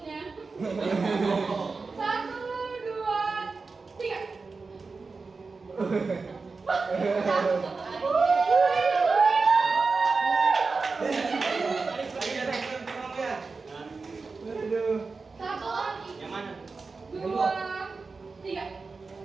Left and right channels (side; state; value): left; quieter; 4.3 dB